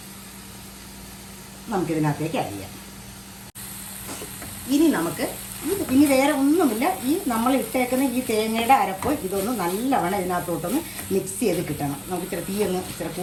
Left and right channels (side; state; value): both; identical; correlation 1.00